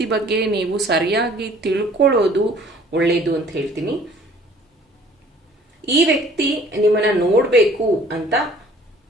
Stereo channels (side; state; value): both; normal; correlation 0.54